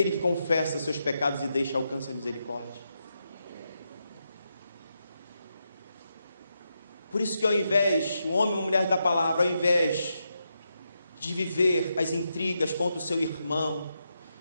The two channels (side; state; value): both; inverted; correlation -0.85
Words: que confessa seus pecados e deixa, alcança a misericórdia. Por isso que ao invés, o homem e a mulher da palavra, ao invés de viver as intrigas contra o seu irmão,